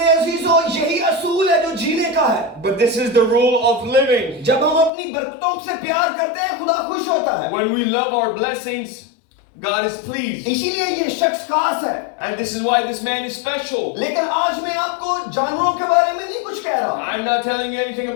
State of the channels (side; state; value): right; drops out; at 4.9 s